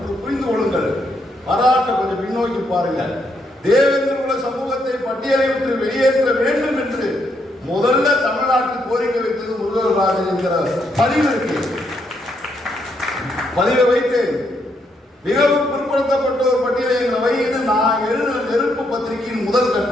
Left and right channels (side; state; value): both; normal; correlation 0.76